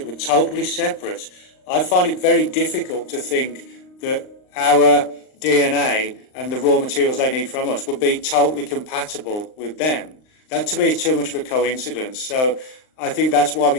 were totally separate, I find it very difficult to think that our DNA and the raw materials they need from us would be totally compatible with them. That to me is too much of a coincidence. So I think that's why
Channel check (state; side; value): late; right; 39 ms